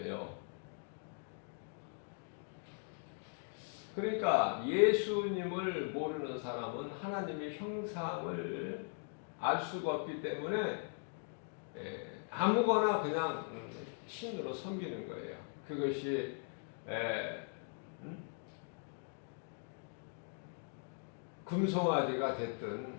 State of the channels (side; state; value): right; silent; 51 dB below the other